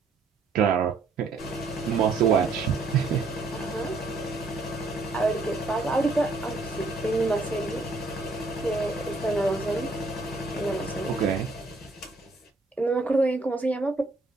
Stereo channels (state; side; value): quieter; left; 3.5 dB